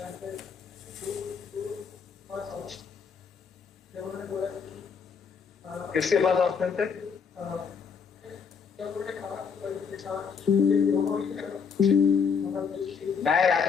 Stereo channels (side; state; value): right; quieter; 6.1 dB